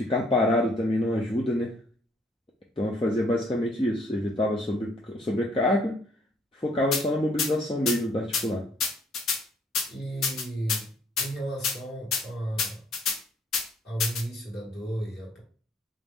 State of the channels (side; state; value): both; normal; correlation 0.64